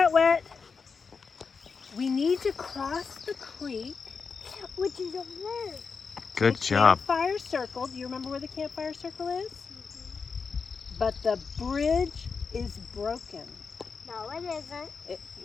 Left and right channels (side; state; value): right; quieter; 5.3 dB